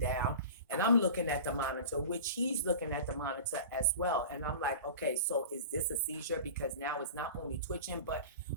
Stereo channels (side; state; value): both; inverted; correlation -0.35